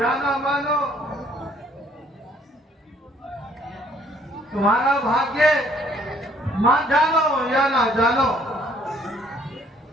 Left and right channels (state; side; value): normal; both; correlation 0.62